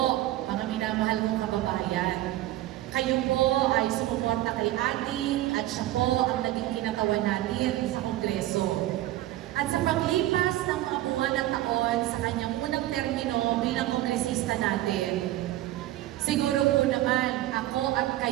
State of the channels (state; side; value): quieter; left; 15.3 dB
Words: mga minamahal kong kababayan. Kayo po ay sumuporta kay Adi at siya po ang naging kinatawan natin sa Kongreso. At sa paglipas ng mga buwan at taon sa kanyang unang termino bilang kongresista natin, siguro po naman ako at